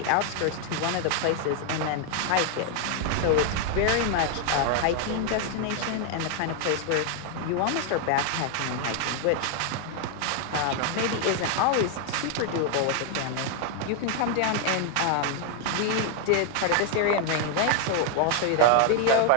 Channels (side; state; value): both; different; correlation 0.00